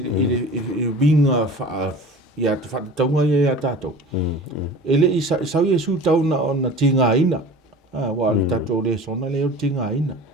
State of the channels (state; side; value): normal; both; correlation 0.39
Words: winga wha ia te whataunga ia tātou. Ele i sau Yesu tauna o na tinga ina. Wa le tātou le sona leo tinga ina.